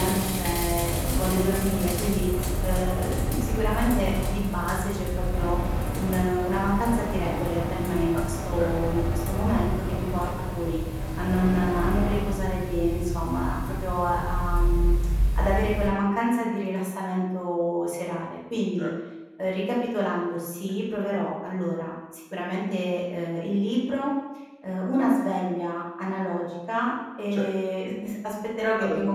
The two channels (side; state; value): both; identical; correlation 1.00